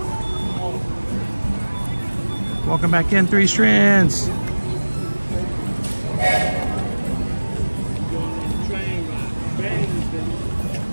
Welcome back in, Three Strands.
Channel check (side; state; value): both; inverted; correlation -1.00